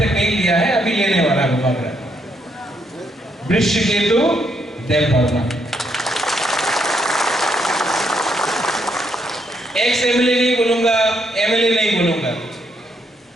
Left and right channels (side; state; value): both; normal; correlation 0.75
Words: नहीं लिया है, अभी लेने वाला है बुबागरा, वृश्चिकेतु देवर्मा, एक्स एमएलए नहीं बोलूंगा, एमएलए नहीं बोलूंगा,